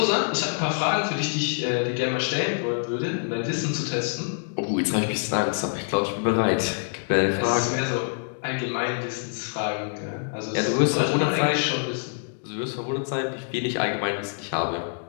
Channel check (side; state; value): right; silent; digital silence